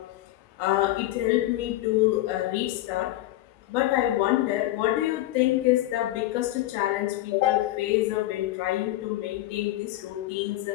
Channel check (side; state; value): right; quieter; 15.7 dB